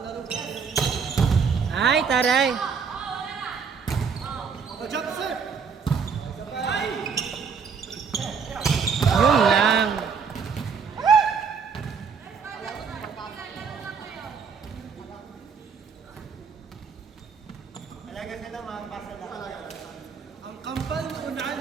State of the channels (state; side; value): quieter; left; 5.9 dB